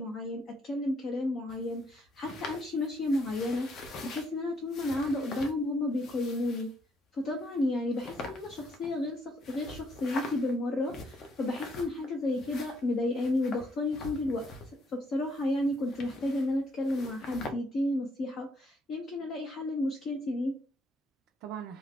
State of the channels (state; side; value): normal; both; correlation 0.71